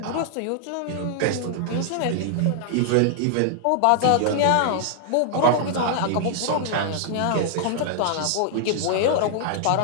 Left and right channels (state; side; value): different; both; correlation -0.01